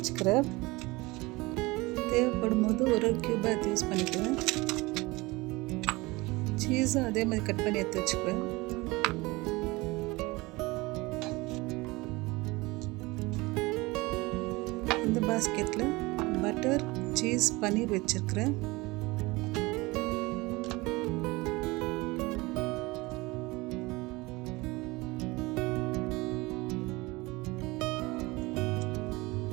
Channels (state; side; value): quieter; left; 22.7 dB